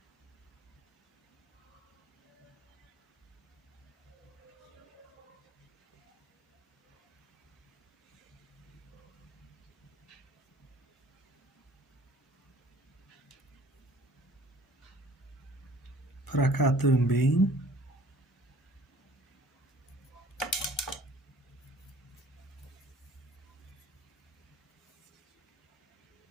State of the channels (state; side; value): normal; both; correlation 0.51